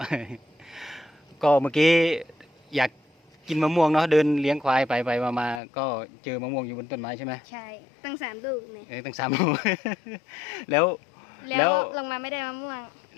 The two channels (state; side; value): drops out; right; at 5.6 s